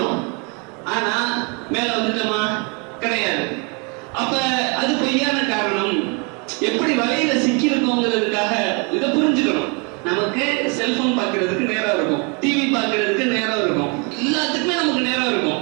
ஆனா மேல வந்துட்டோமா? கிடையாது. அப்ப அது பொய்யான காரணம். எப்படி வலையில சிக்கி இருக்கோங்கிறதுக்காக இதை புரிஞ்சுக்கணும். நமக்கு செல்போன் பார்க்கறதுக்கு நேரம் இருக்கும், டிவி பார்க்கறதுக்கு நேரம் இருக்கும், எல்லாத்துக்குமே நமக்கு நேரம்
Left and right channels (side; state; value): left; quieter; 33.3 dB